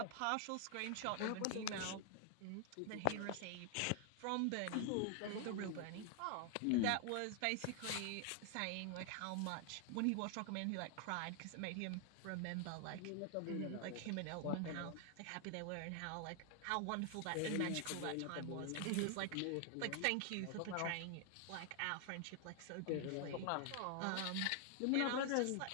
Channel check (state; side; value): different; both; correlation 0.00